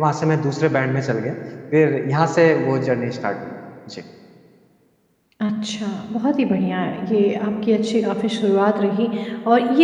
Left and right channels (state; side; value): identical; both; correlation 1.00